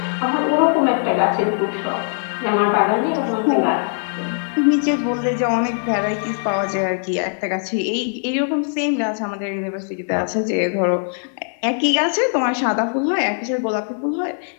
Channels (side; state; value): right; silent; 62 dB below the other